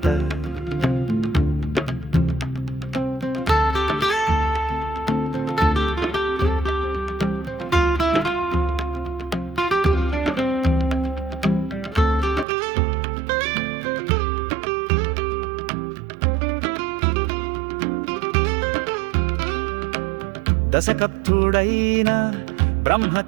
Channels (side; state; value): left; drops out; at 12.5 s